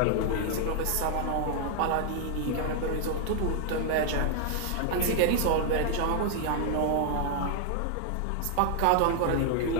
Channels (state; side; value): different; both; correlation 0.00